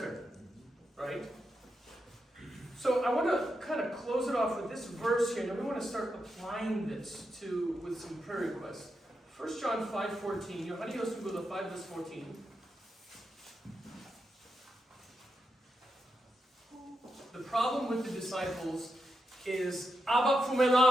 Right? So I want to kind of close it off with this verse here, and then we want to start applying this with some prayer requests. 1 John 5:14. Yohani Yosugula 5 verse 14. The problem with the disciples is Abba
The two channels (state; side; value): normal; both; correlation 0.86